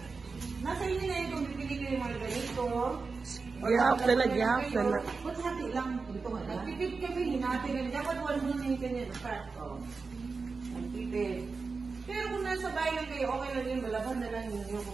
nasa inyo na yun kung bibili kayo yung mga ganito. Gihap na na. Ba't hati lang? Ito nga lang. Nagpipid kami, hinati rin. Dapat wala mo yung kanya na fat. Nagpipid. Pero kung nasa bahay lang kayo, okay lang yun. Malaban na lang ninyo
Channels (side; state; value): left; quieter; 4.4 dB